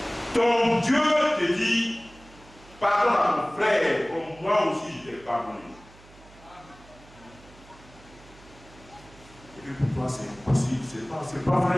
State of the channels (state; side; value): noise; right; hum, 23 dB below the sound